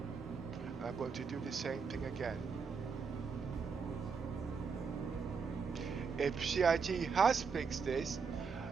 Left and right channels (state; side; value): quieter; left; 5.6 dB